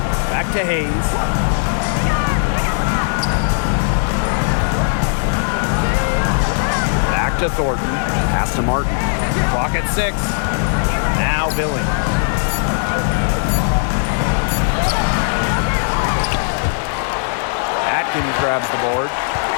Back to Hayes. Back to Thornton. Pass to Martin. Clock at 6. Now Billings. Atkins grabs the board.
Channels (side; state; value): right; silent; digital silence